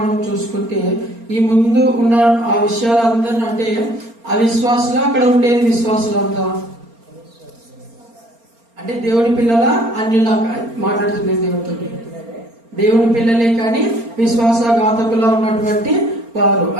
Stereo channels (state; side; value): late; left; 4.3 ms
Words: మనం చూసుకుంటే ఈ ముందు ఉన్న ఆ విషయాలందరినీ అంటే అవిశ్వాసులు అక్కడ ఉండేది విశ్వాసులు అంతా అంటే దేవుని పిల్లల అన్యులా మాట్లాడుతుంది దేవుడితో. దేవుని పిల్లలే కానీ విశ్వాసఘాతకులా ఉన్నటువంటి వారు